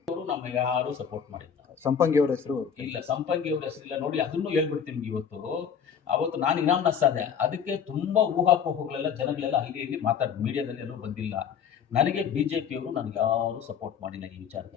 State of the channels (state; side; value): quieter; right; 7.5 dB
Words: ಅವರು ನಮಗೆ ಯಾರು ಸಪೋರ್ಟ್ ಮಾಡಿಲ್ಲ. ಸಂಪಂಗಿ ಅವರ ಹೆಸರು ಇಲ್ಲ, ಸಂಪಂಗಿ ಅವ್ರ ಹೆಸರಿಲ್ಲ. ನೋಡಿ, ಅದನ್ನು ಹೇಳ್ಬಿಡ್ತೀನಿ. ಅವತ್ತು ನಾನು ಇನಾಮ್ನಸ್ ಆದೆ. ಅದಕ್ಕೆ ತುಂಬಾ ಊಹಾಪೋಹಗಳೆಲ್ಲ ಜನಗಳೆಲ್ಲ ಇಲ್ಲಿ ಮಾತಾಡ್ ಮೀಡಿಯಾದಲ್ಲಿ ಎಲ್ಲೂ ಬಂದಿಲ್ಲ. ನನಗೆ BJP ಅವರು ನನಗೆ ಯಾರು ಸಪೋರ್ಟ್ ಮಾಡಿಲ್ಲ ಈ